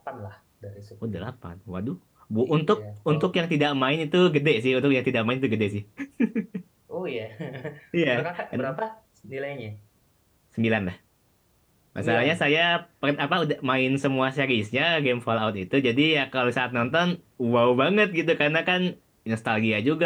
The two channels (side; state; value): both; identical; correlation 1.00